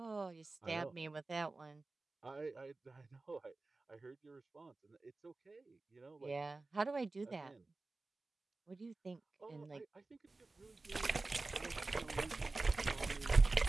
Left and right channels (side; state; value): left; quieter; 3.4 dB